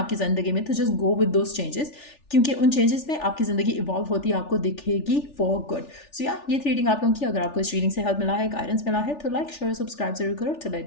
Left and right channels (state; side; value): late; right; 3.4 ms